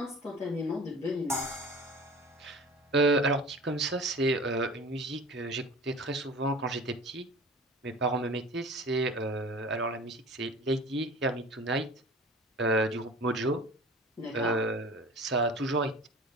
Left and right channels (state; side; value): normal; both; correlation 0.40